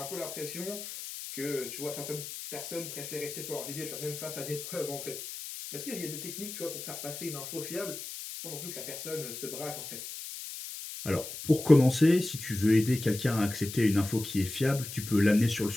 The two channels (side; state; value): left; noise; hiss, 9 dB below the sound